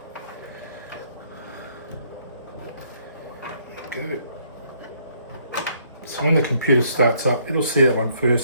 Good. So when the computer starts up, it'll see that one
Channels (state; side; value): inverted; both; correlation -0.68